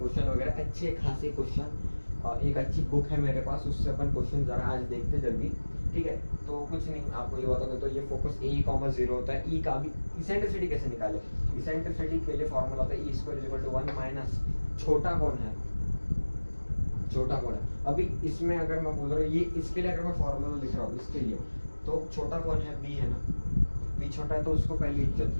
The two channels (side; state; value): both; inverted; correlation -1.00